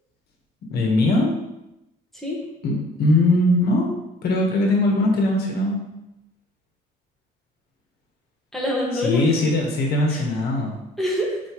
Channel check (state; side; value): normal; both; correlation 0.54